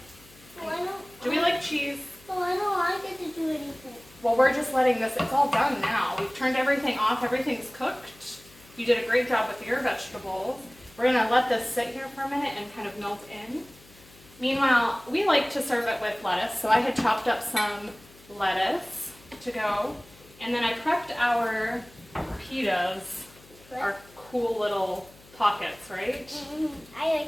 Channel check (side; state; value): left; noise; hum, 25 dB below the sound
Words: Do we like cheese? Oh, I don't get to do anything. Well, we're just letting this, it's all done now. We've turned everything off, everything's cooked. You did a great job with your vegetables. We're gonna let this sit here for a minute and kind of melt in. Meanwhile, we like to serve it with lettuce, so I had chopped up some lettuce to go. And then I prepped our pitas, our cool little pockets, right? I